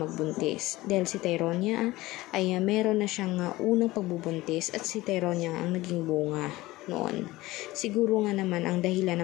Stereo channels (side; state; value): right; quieter; 18.7 dB